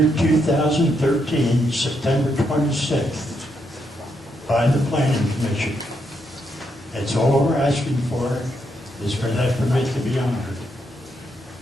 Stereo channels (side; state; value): both; normal; correlation 0.79